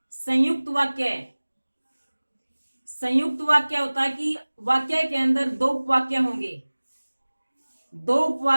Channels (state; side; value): inverted; both; correlation -1.00